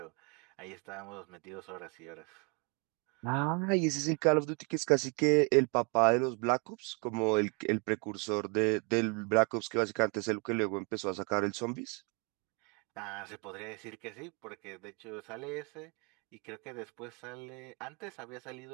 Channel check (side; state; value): left; quieter; 32.8 dB